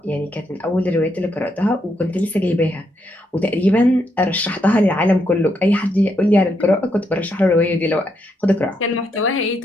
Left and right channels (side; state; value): both; normal; correlation 0.78